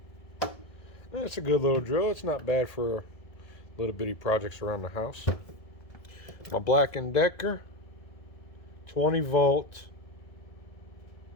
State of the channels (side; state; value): right; late; 1.7 ms